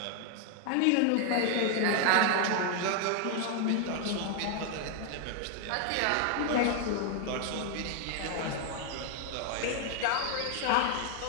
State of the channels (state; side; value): different; both; correlation 0.00